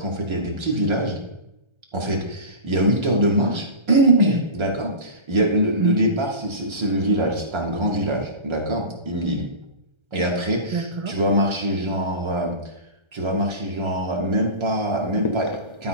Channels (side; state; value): left; late; 1.3 ms